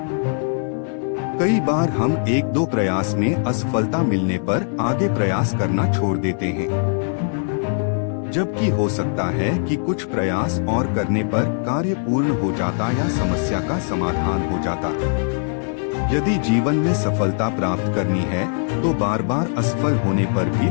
कई बार हम 1-2 प्रयास में असफलता मिलने पर आगे प्रयास करना छोड़ देते हैं, जबकि हो सकता है कि कुछ प्रयास और करने पर कार्य पूर्ण हो जाता या समस्या का समाधान हो जाता। यदि जीवन में सफलता प्राप्त करनी है तो बार बार असफल होने पर भी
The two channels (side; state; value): right; silent; 59 dB below the other